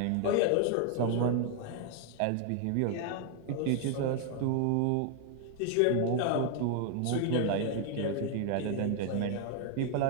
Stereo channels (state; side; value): different; both; correlation 0.00